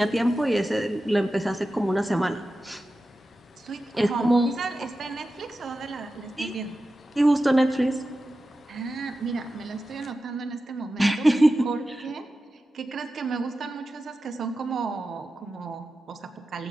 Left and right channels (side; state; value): both; normal; correlation 0.93